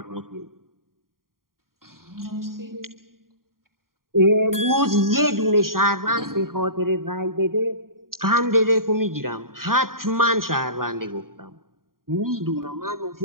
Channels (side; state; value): left; late; 0.92 ms